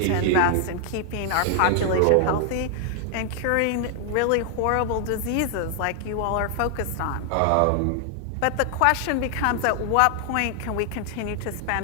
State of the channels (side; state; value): both; different; correlation 0.00